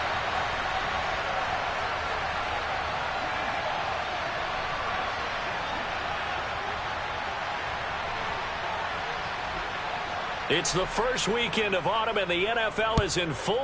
It's the first weekend of autumn, and the NFL is in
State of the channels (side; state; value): both; identical; correlation 1.00